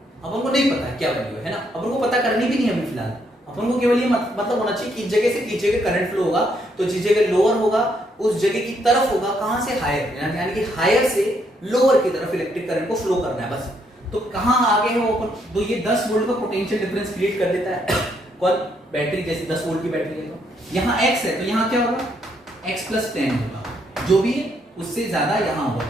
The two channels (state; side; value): normal; both; correlation 0.73